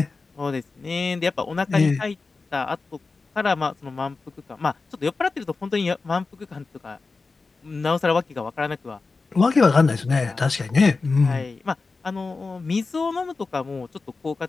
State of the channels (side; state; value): right; quieter; 4.0 dB